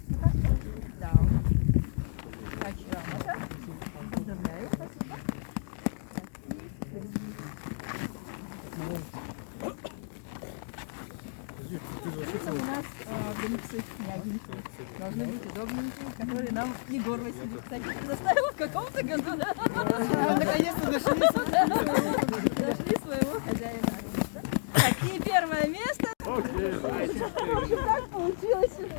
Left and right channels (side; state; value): right; silent; digital silence